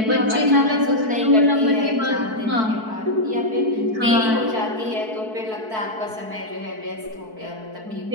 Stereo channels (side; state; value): left; late; 4.6 ms